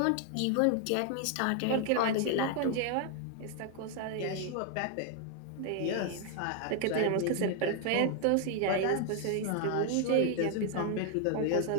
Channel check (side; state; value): both; different; correlation 0.00